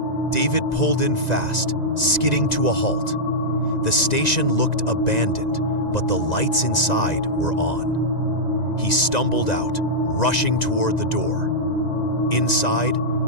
David pulled in fast, skidding to a halt. The station looked abandoned, but the lights inside were on. He stumbled out, rushing toward the door. Inside,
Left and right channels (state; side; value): late; right; 1.9 ms